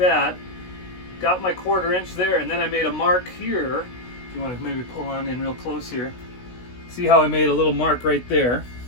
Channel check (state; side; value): late; right; 16 ms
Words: got my 1/4 inch there, and then I made a mark here. If you want to maybe pull on in real close here. See how I made a little mark right there?